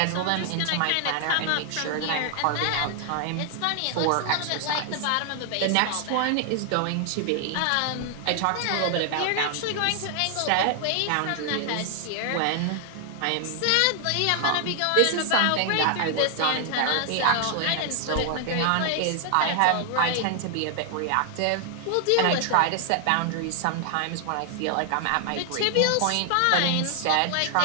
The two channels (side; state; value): both; different; correlation 0.00